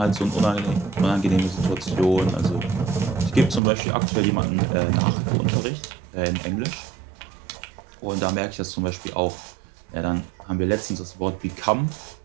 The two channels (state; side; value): drops out; left; at 3.6 s